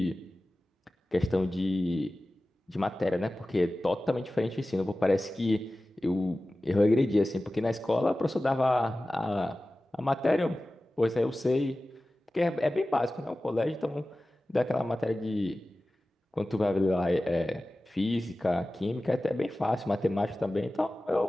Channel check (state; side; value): normal; both; correlation 0.96